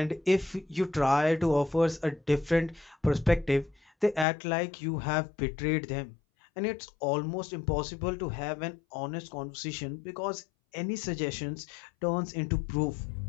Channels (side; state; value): right; drops out; at 4.2 s